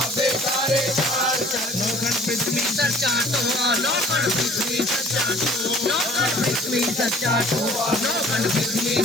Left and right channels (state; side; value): normal; both; correlation 0.52